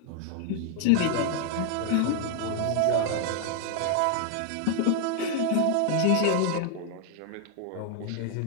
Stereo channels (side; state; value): both; different; correlation 0.00